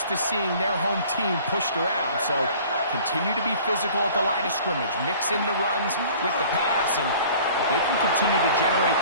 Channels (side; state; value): both; inverted; correlation -0.48